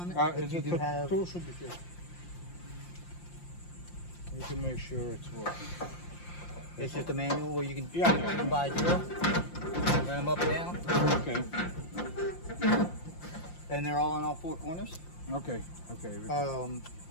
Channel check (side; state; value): right; late; 5.7 ms